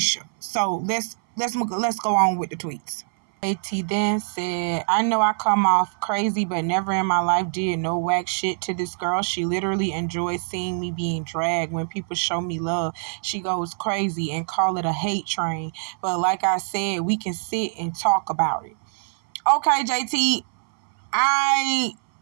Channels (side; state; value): left; silent; 59 dB below the other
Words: So let's go on with the tweets. JT then said, "I know I come off crazy, but never in my life did no whack shit to this girl. She literally enjoys seeing me being dragged. When people show me love, she goes crazy and call it a hate train. But like I said, we can sit and talk about it." Okay, JT, I